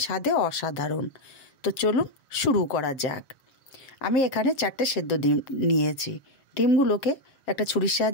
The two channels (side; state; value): right; late; 7.4 ms